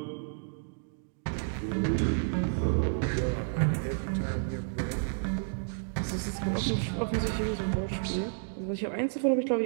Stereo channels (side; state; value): left; silent; digital silence